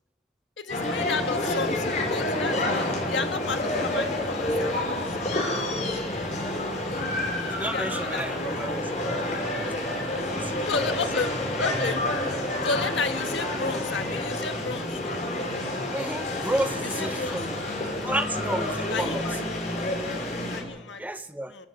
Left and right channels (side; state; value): both; normal; correlation 0.32